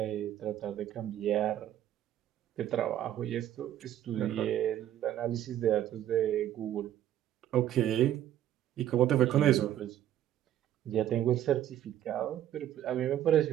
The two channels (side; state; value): left; quieter; 11.7 dB